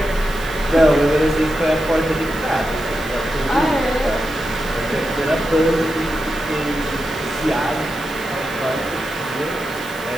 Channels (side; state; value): right; noise; hiss, 17 dB below the sound